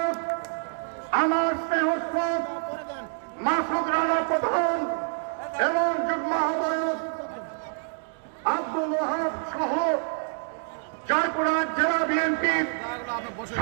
আমার স্নেহস্পদ মাসুদ রানা প্রধান এবং যুগ্ম আহ্বায়ক আব্দুল ওয়াহাব সহ জয়পুরহাট জেলা বিএনপির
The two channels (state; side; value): silent; left; digital silence